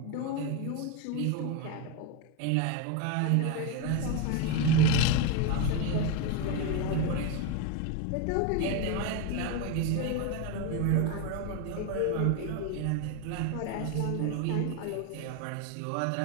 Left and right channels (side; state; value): both; different; correlation 0.03